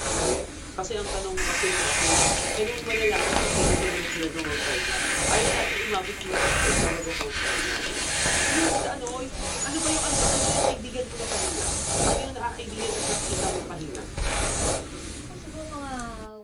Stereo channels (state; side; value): identical; both; correlation 1.00